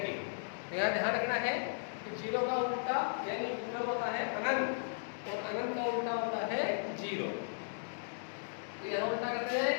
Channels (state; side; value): silent; right; digital silence